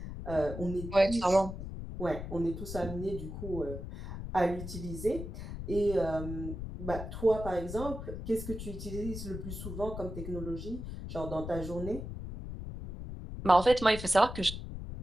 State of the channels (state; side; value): noise; left; rumble, 8 dB below the sound